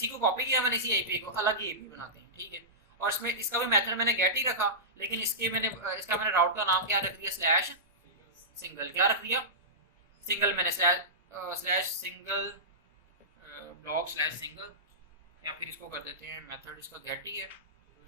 को कॉपी किया मैंने, इसी API को अलग ही API बनाते हैं, ठीक है। और इसमें इसका भी मेथड मैंने गेट ही रखा, लेकिन इसका मैंने राउट का नाम क्या रख दिया, /सिंगल। क्या रख दिया, सिंगल। मैंने /सिंगल ब्लॉग /सिंगल, या फिर इसको कर देते हैं मेथड इसका गेट ही है।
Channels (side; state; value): both; normal; correlation -0.18